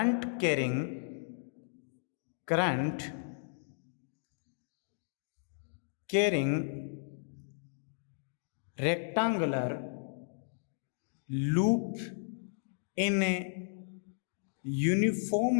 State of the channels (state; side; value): silent; right; digital silence